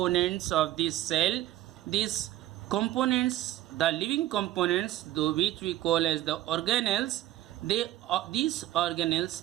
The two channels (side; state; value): left; quieter; 14.6 dB